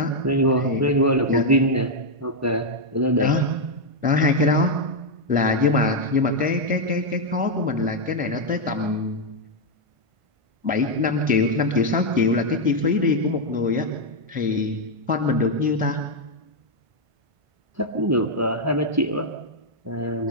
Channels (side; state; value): left; late; 1.5 ms